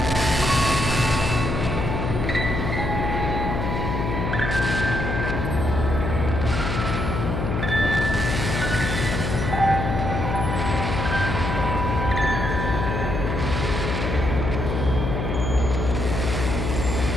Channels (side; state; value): left; noise; hum, 2 dB below the sound